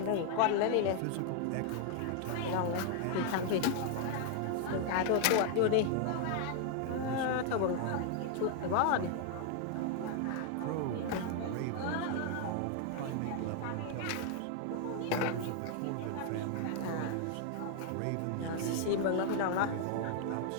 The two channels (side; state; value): both; different; correlation 0.00